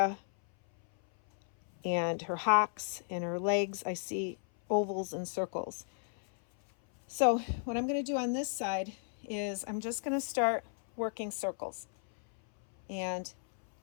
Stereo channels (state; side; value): silent; right; 55 dB below the other